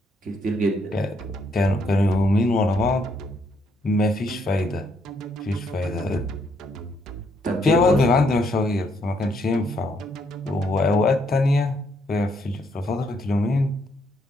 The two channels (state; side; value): normal; both; correlation 0.73